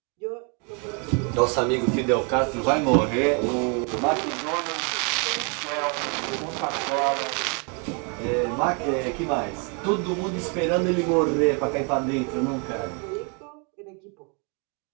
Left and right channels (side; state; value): left; quieter; 35.7 dB